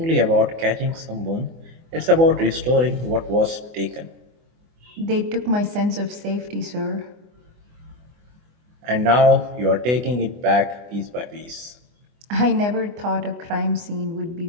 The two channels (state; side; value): late; left; 24 ms